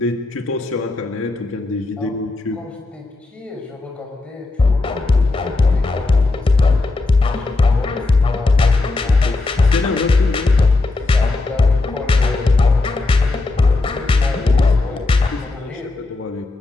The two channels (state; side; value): quieter; right; 3.3 dB